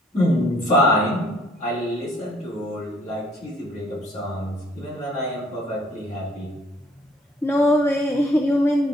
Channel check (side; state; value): both; normal; correlation 0.61